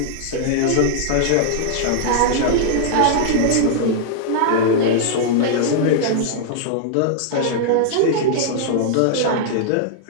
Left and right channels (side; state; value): both; different; correlation -0.01